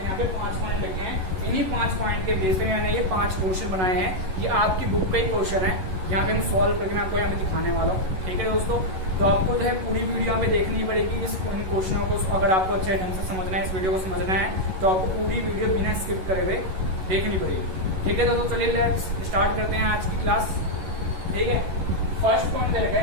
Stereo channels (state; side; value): late; left; 11 ms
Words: यहाँ पे 5 पॉइंट लिखे हैं, इन्हीं 5 पॉइंट के बेस पे मैंने ये 5 क्वेश्चन बनाए हैं। ये आपकी बुक का ही क्वेश्चन है, यहाँ पे हम सॉल्व करके मैं आपको यहाँ पे दिखाने वाला हूँ। ठीक है दोस्तों, तो आपको जो है पूरी वीडियो यहाँ पे देखनी पड़ेगी। इन क्वेश्चनों को अगर आपको अच्छे ढंग से समझना है, इस वीडियो को समझना है, तो आपको पूरी वीडियो बिना स्किप करे हुए देखनी पड़ेगी। ठीक है दोस्तों, चलिए लेट्स स्टार्ट करते हैं आज की क्लास। ठीक है, फर्स्ट पॉइंट दे रखा